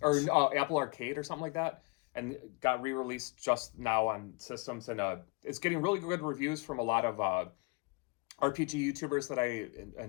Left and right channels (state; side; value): quieter; right; 29.1 dB